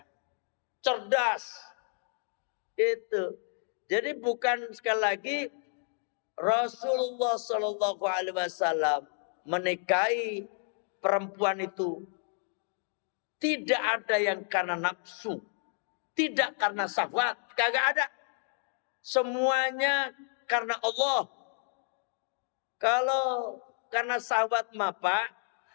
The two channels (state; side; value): silent; right; 57 dB below the other